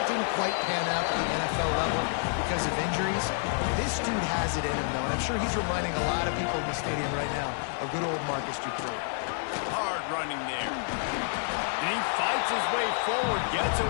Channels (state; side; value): silent; right; 59 dB below the other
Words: didn't quite pan out at the NFL level because of injuries. This dude has it in him, though, and I'm sure he's reminding a lot of people in the stadium right now of good old Marcus Dupree. Hard running there. And he fights his way forward, gets